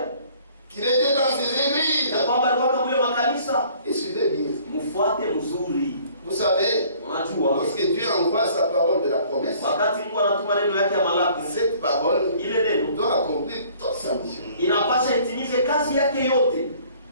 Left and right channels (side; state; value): both; inverted; correlation -0.55